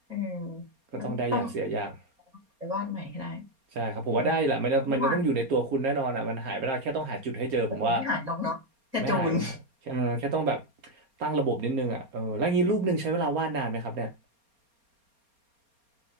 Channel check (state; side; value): late; left; 4.3 ms